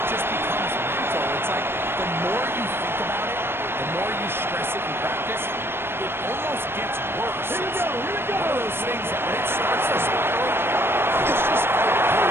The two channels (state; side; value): late; left; 0.11 ms